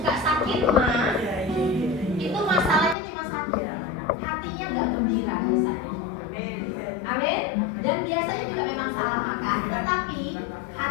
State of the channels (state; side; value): drops out; right; at 3.0 s